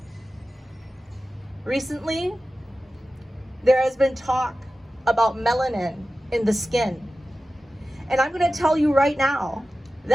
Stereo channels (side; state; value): both; normal; correlation 0.95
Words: Recently, there has been talk about melanin in the skin. And I'm going to tell you right now,